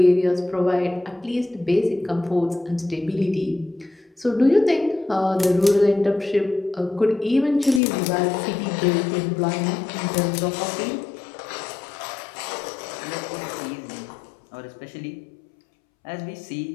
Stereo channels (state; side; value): drops out; right; at 7.8 s